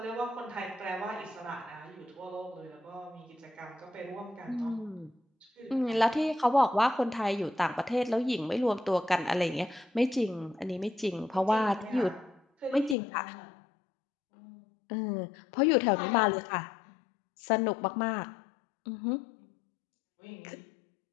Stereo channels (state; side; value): drops out; right; at 13.0 s